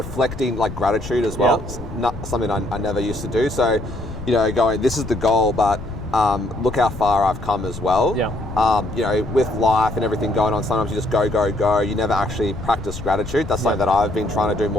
like gratitude as well. It's not something I never used to do. So, going, this is the goal, but look how far I've come as well. With life and everything going on, sometimes you just go. You never actually practice gratitude. That's something that I've been trying to do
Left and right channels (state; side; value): noise; left; rumble, 11 dB below the sound